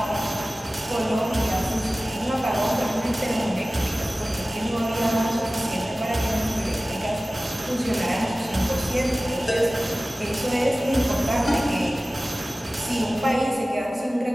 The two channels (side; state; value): both; normal; correlation 0.97